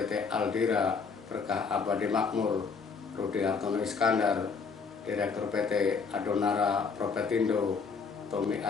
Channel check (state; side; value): quieter; right; 5.3 dB